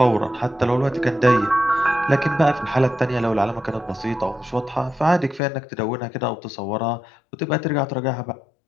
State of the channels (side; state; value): right; drops out; at 5.4 s